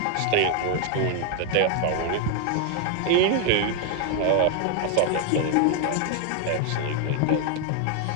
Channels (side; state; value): both; different; correlation 0.00